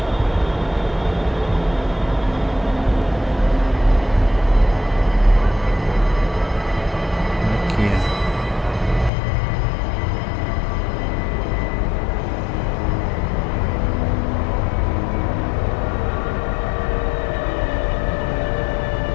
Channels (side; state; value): right; drops out; at 9.1 s